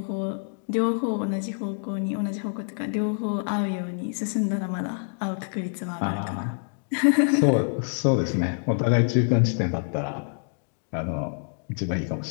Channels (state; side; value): silent; right; digital silence